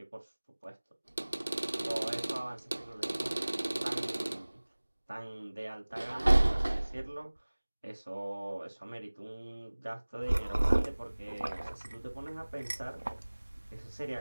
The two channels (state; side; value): inverted; both; correlation -1.00